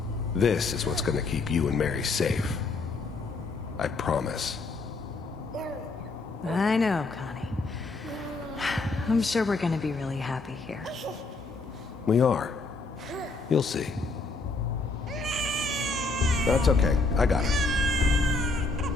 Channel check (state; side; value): quieter; right; 3.7 dB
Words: This is what's gonna keep you and Mary safe. I promise. I know, Connie. I'm sure we're gonna be really happy here. We are. You'll see. That's okay. I got it.